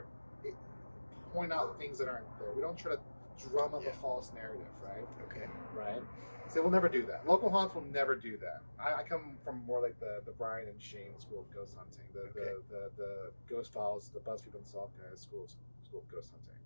point out things that aren't there. We don't try to drum up a false narrative, right? Okay. Right. So we'll never do that. Local haunts will never do that. I come from more like the Brian and Shane school of ghost hunting, the Ghost Files, the BuzzFeed Unsolved guys school of ghost hunting.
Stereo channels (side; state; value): both; inverted; correlation -1.00